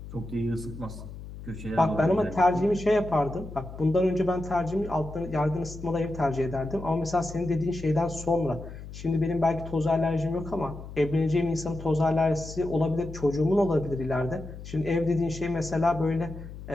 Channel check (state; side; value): noise; left; hum, 12 dB below the sound